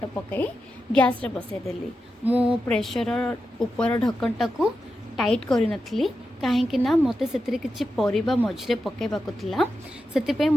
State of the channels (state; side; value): normal; both; correlation 0.89